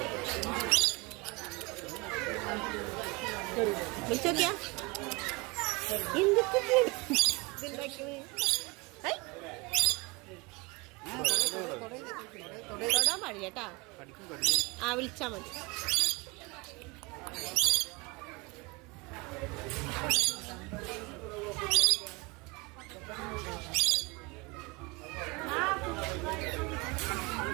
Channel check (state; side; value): quieter; left; 26.6 dB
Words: വിളിച്ചോക്കിയാ എന്തൊക്കെ തൊടാൻ പാടില്ല കേട്ടാ. ആ വിളിച്ചാ മതി.